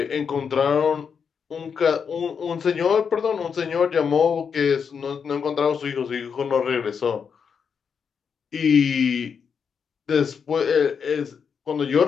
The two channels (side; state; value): right; quieter; 6.5 dB